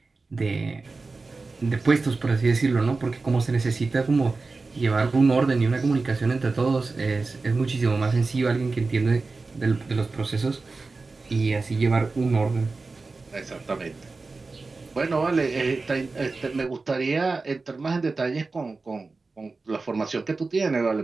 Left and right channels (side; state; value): left; quieter; 3.8 dB